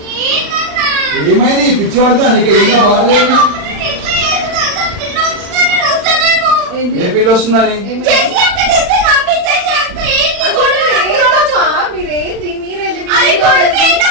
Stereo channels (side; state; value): left; late; 40 ms